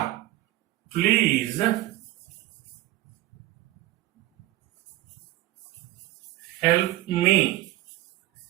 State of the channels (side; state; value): left; quieter; 16.0 dB